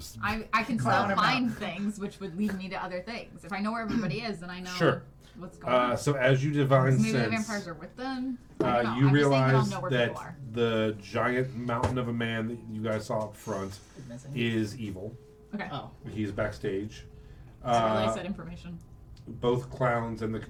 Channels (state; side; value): identical; both; correlation 1.00